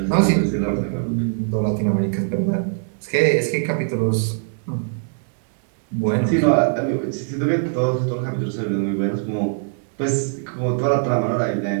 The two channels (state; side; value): silent; left; digital silence